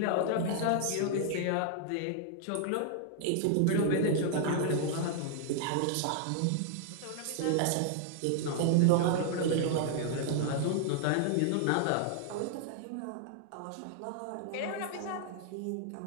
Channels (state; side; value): different; both; correlation 0.00